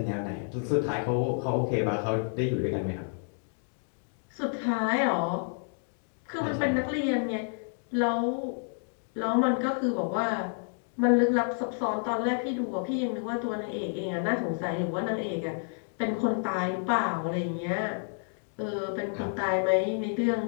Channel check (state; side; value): silent; right; 58 dB below the other